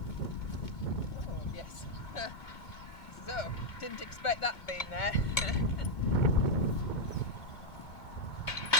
Oh, yes. So, didn't expect that being there.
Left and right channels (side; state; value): right; late; 2.2 ms